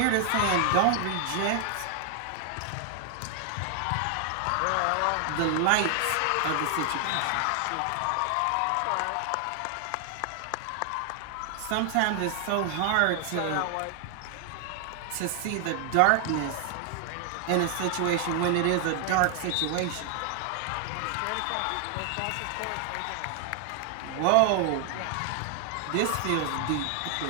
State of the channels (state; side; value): different; both; correlation 0.00